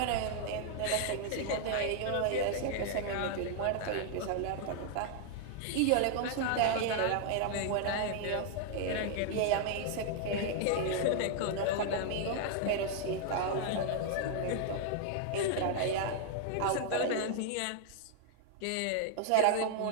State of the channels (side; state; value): both; different; correlation 0.00